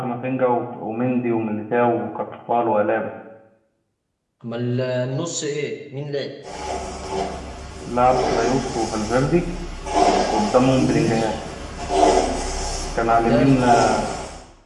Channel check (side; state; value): both; identical; correlation 1.00